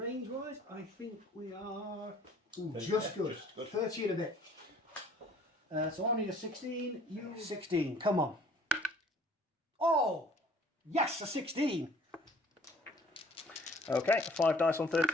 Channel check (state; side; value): normal; both; correlation 0.55